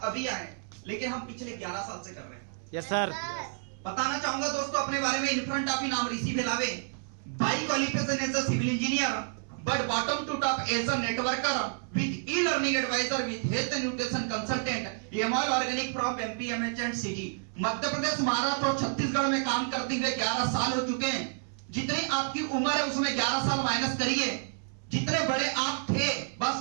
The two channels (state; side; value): silent; left; 58 dB below the other